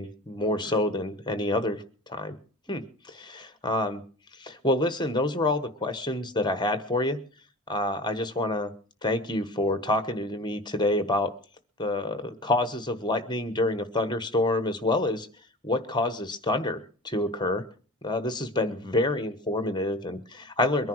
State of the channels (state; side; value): normal; both; correlation 0.37